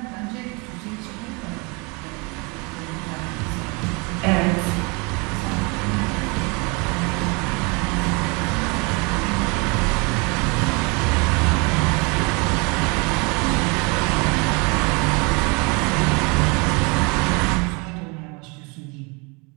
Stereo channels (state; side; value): quieter; left; 29.9 dB